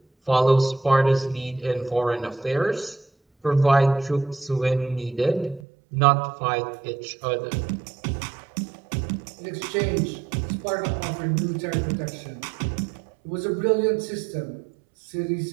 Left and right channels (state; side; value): drops out; left; at 5.6 s